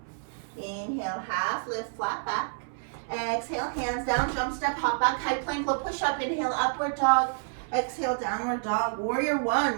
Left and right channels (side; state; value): left; silent; 59 dB below the other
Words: Inhale, half lift, flat back. Exhale, hands down, jump step, hop back, high plank, low push up. Inhale, upward dog. Exhale, downward dog. Warrior 1,